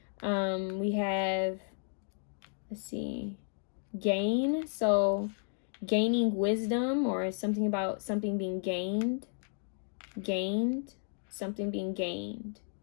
We have, let's see, gain. So gaining wisdom, or something about something being gained. Something being gained.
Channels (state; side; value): silent; right; digital silence